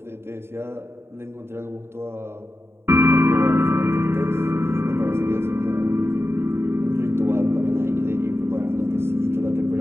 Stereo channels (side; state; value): left; late; 0.12 ms